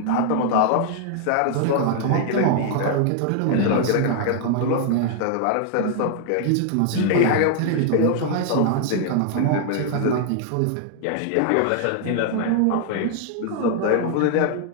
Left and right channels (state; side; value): different; both; correlation 0.00